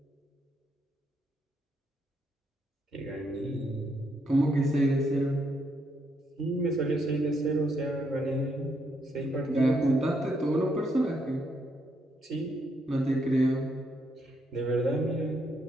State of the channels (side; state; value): both; normal; correlation 0.76